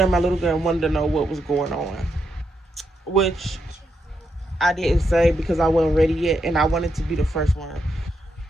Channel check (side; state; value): both; normal; correlation 0.82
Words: my little girl wanted to know what was going on, which I didn't say because I wasn't ready yet, and I wanted to be the first one